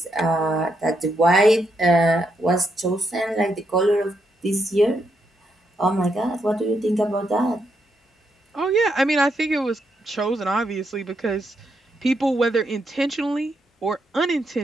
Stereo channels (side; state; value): both; normal; correlation 0.80